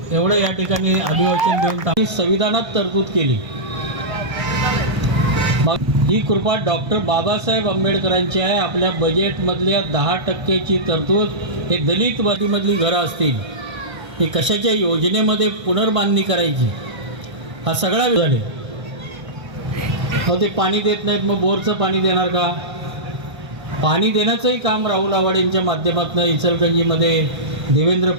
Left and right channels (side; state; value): left; late; 1.6 ms